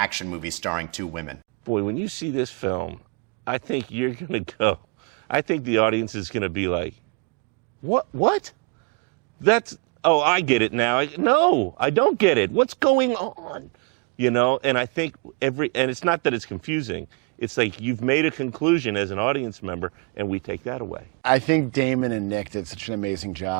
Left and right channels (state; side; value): quieter; left; 31.5 dB